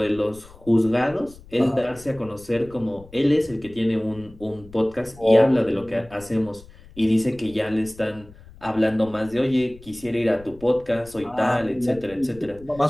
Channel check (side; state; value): left; noise; rumble, 22 dB below the sound